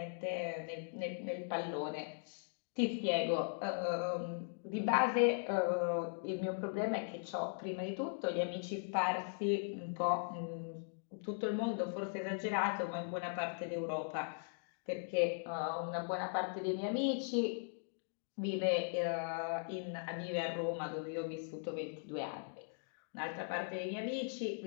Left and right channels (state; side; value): silent; right; digital silence